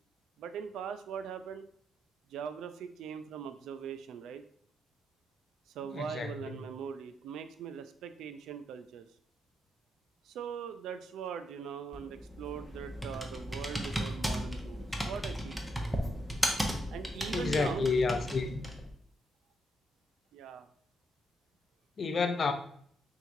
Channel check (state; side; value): normal; both; correlation 0.79